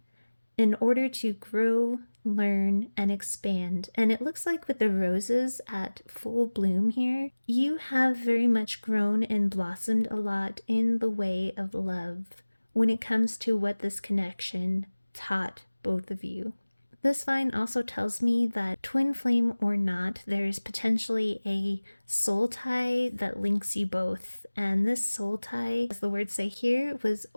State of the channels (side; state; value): both; inverted; correlation -1.00